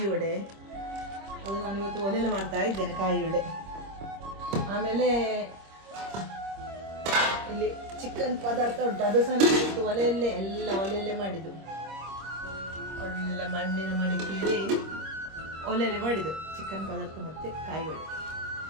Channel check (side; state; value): left; late; 26 ms